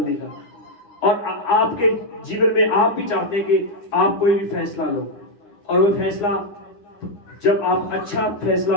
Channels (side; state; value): right; late; 9.8 ms